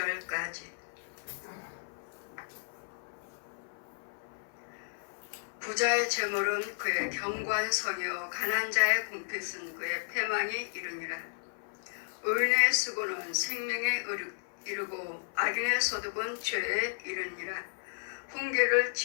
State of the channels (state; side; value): silent; right; 55 dB below the other